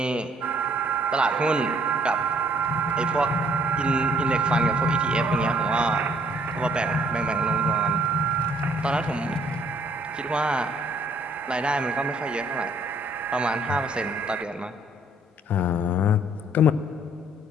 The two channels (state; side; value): normal; both; correlation 0.62